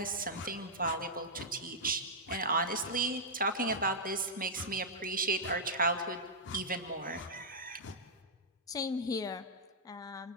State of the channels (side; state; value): both; normal; correlation -0.09